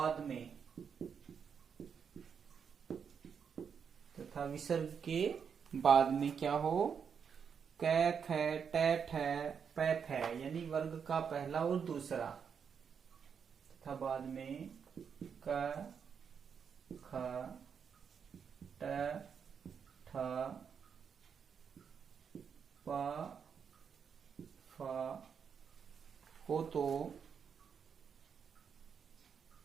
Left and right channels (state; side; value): quieter; left; 6.9 dB